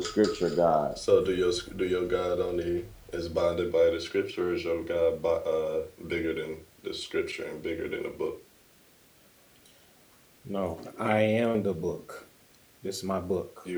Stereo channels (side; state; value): both; identical; correlation 1.00